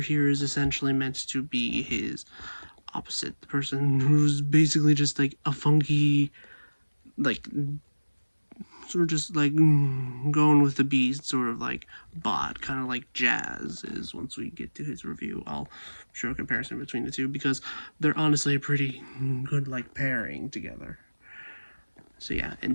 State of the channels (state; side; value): inverted; both; correlation -1.00